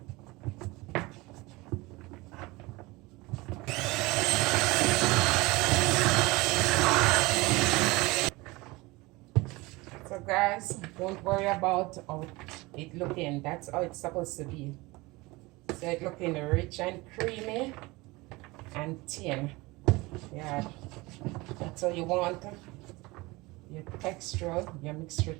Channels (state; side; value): quieter; left; 22.5 dB